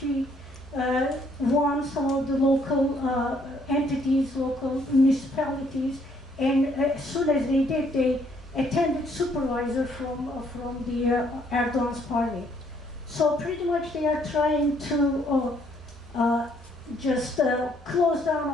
won some of the local entities, local municipalities, and as soon as they did, they attended supervisor from the Erdoğan's party. So pretty much they are trying to just close down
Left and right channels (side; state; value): both; normal; correlation 0.67